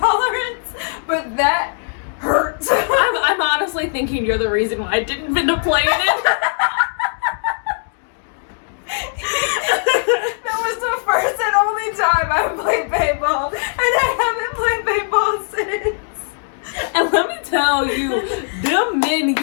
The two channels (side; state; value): right; silent; 66 dB below the other